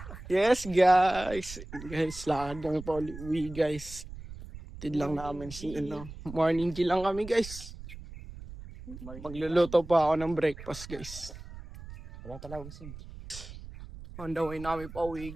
Yes guys. Guys, lakad kami pa uwi guys. Tid lang namin si morning G lang kami guys. Magluluto pa ako ng breakfast guys. Wala talaga gusto. On the way namin pa uwi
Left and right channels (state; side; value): noise; right; rumble, 13 dB below the sound